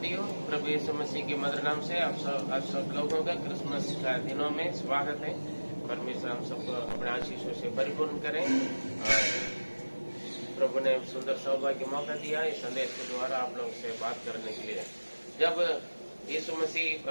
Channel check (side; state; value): both; inverted; correlation -1.00